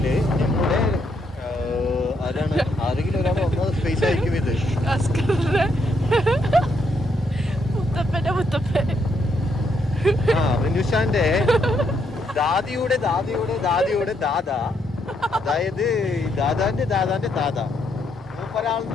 ഞങ്ങളുടെ ആരാണ് ആരെങ്കിലും ഒരാൾ ഒന്നാമത് സ്പേസ് ആയിരിക്കും ഇത്. റിനുഷാന്റെ ദാദിയുടെ ദാദിയുടെ ദാദിയുടെ ദാദ, അതായത് ദാദാന്റെ ദാദാന്റെ ദാദ,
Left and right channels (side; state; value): both; normal; correlation 0.75